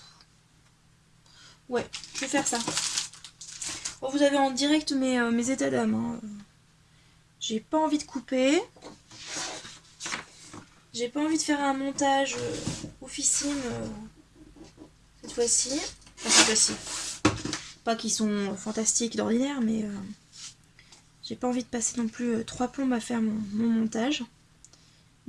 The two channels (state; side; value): identical; both; correlation 1.00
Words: ouais, je vais faire ça. Bon, vous avez en direct mes états d'âme. Hein. J'ai pas envie de couper. J'ai pas envie de faire un montage oufissime cette fois-ci. Enfin, cette fois-ci. Pas qu'ils sont fantastiques d'ordinaire, mais j'ai pas envie de passer non plus 3 plombes à faire mon montage.